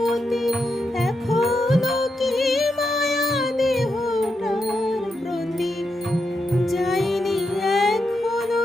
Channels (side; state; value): both; normal; correlation 0.85